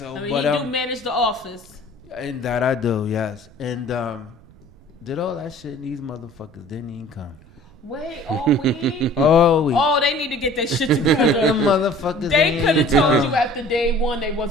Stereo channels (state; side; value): noise; right; rumble, 25 dB below the sound